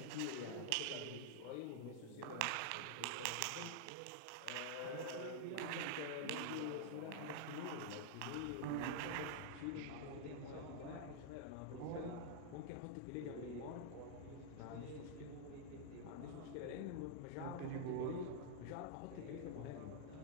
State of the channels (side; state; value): both; different; correlation -0.01